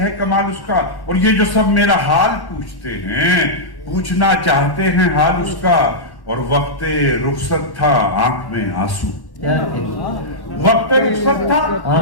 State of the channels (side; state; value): right; late; 1.1 ms